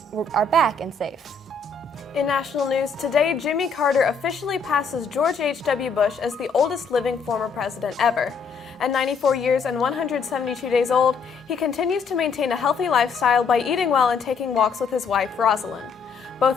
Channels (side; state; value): right; quieter; 4.9 dB